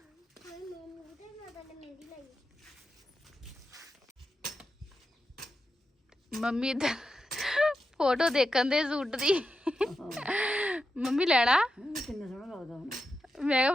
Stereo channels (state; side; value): normal; both; correlation 0.88